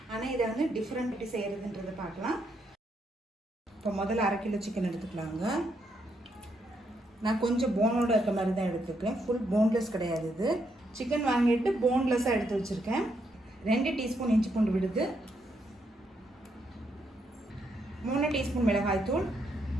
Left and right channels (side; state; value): both; normal; correlation 0.77